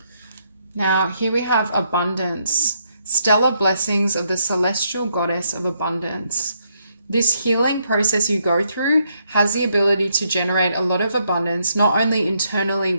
Now, here we have abundance, stellar blessings of the celestial goddess of abundance. This healing process you go through has the ability to generate a lot of abundance, not only internally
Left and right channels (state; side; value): inverted; both; correlation -0.76